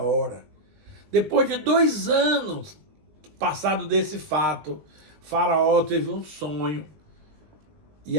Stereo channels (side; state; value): left; late; 19 ms